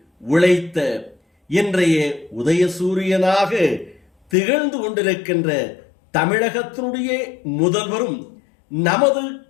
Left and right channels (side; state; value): right; drops out; at 4.4 s